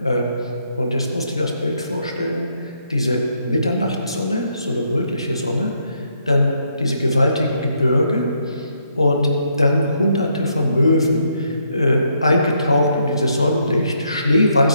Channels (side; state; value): both; inverted; correlation -0.74